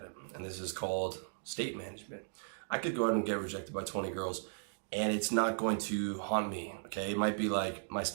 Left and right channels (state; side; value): silent; left; digital silence